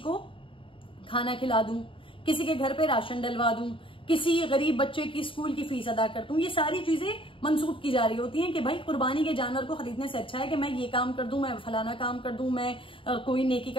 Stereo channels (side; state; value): right; late; 0.25 ms